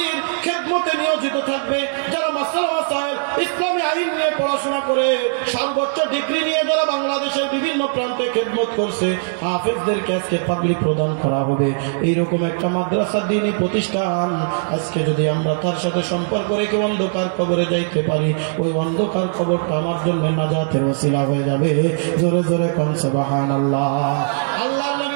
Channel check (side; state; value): left; silent; digital silence